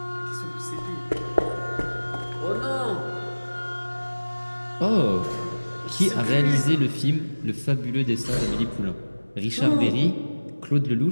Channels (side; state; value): both; inverted; correlation -1.00